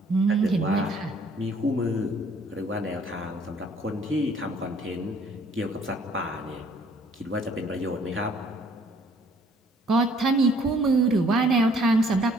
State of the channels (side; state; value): both; normal; correlation 0.60